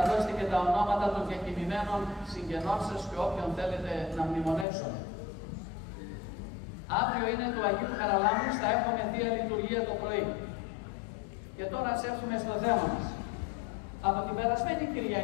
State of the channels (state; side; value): drops out; right; at 4.7 s